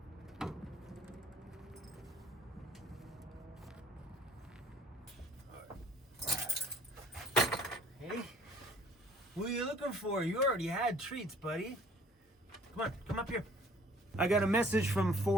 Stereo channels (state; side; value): normal; both; correlation 0.55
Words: Hey, what are you looking for? You already had treats, buddy. Come on, come up here. I got a message from